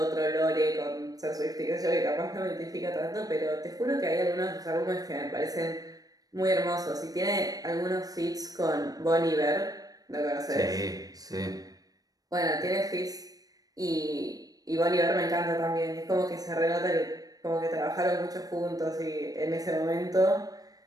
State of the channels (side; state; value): left; late; 0.18 ms